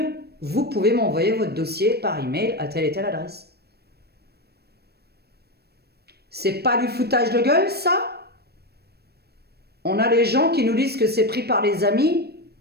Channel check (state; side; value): late; left; 0.47 ms